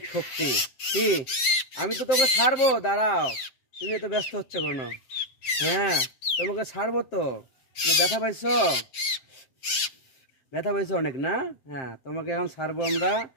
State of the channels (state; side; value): late; right; 7.7 ms